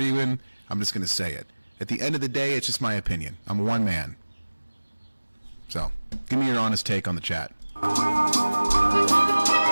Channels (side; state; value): both; inverted; correlation -1.00